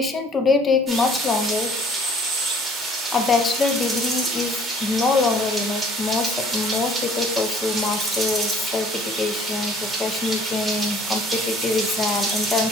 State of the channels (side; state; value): both; normal; correlation 0.55